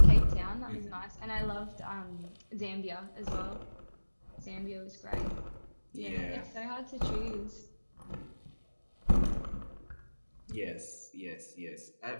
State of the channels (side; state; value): both; inverted; correlation -1.00